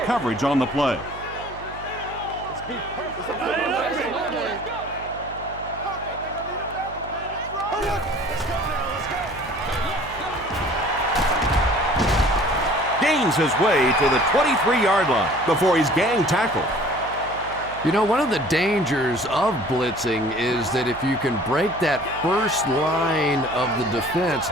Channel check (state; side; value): noise; right; hum, 16 dB below the sound